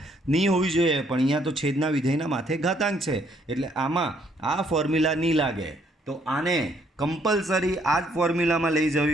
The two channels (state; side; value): normal; both; correlation 0.68